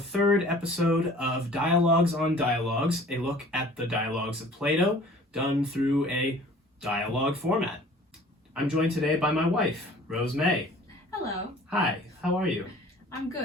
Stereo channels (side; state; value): both; normal; correlation 0.49